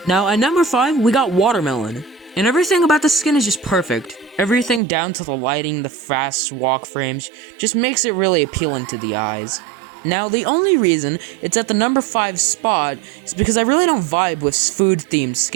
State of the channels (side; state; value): left; drops out; at 4.8 s